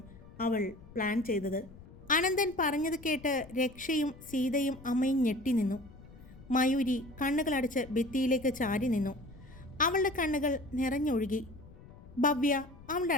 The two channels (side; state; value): left; noise; rumble, 20 dB below the sound